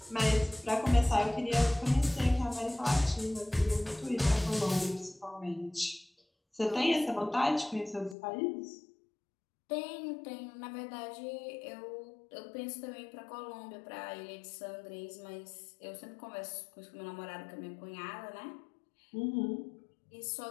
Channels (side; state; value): right; drops out; at 8.2 s